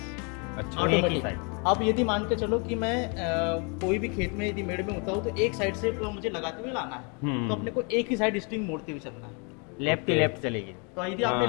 अच्छा। एक ही ऑटोमेटिक। साइड। अब यदि मान के चलो कि मैं कोई भी खेत में यदि मेड़ में होता हूँ तो एक साइड से मुझे लगाते हुए लाना है, तो अपने को एक ही साइड स्ट्रिंग मोड़ते हुए चलना है। लेफ्ट ही लेफ्ट चलेगी। तो यदि आपने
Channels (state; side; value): quieter; right; 34.7 dB